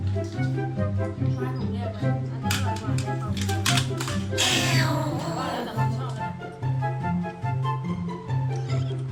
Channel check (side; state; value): both; identical; correlation 1.00